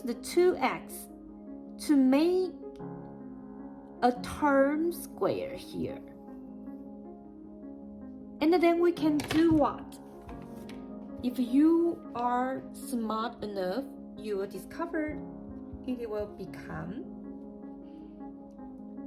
the 2x to make a term square here. And then we can do what? If you are smart enough, you will discover it will become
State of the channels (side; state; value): both; identical; correlation 1.00